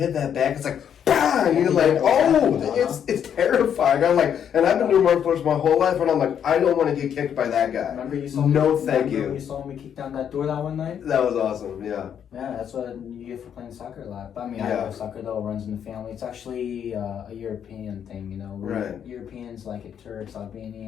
that back, it's like bang! You're like, it's terrifying. I'm like, and I've been doing martial arts my whole life, and I'm like, I don't want to get kicked by that guy. Remember you saw you. You saw me kick down that door that one night. That was awesome. Yeah. Yeah, that's what you get for playing soccer a lot. But I mean, Yeah. I love soccer though. It runs in the family. It's actually a European thing. Right. Europeans like it. Turks,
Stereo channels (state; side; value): quieter; right; 8.6 dB